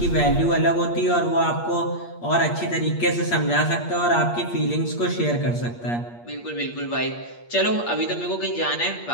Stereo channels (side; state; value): right; late; 8.5 ms